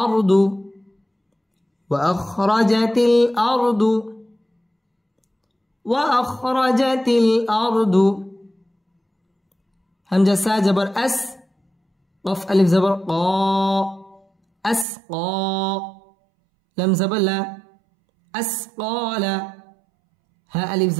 أرض، وأخرجت الأرض، وأخرجت الأرض. همزة سا جبر أس، قف ألف زبر قا، أسقى، لم زبر لا، أسقال، ها ألف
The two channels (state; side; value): drops out; left; at 14.9 s